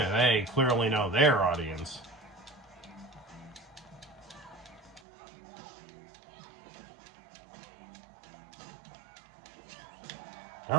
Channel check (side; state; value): left; drops out; at 5.0 s